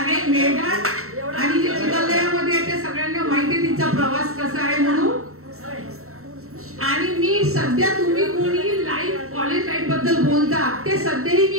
मेळघाट. आणि जे चिखलदऱ्यामध्ये आहे ते सगळ्यांना माहिती आहे तिचा प्रवास कसा आहे म्हणून. आणि मी सध्या तुम्ही कोणी लाईफ कॉलेज लाईफ बद्दल बोलता ते सध्याही मी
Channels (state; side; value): late; left; 0.63 ms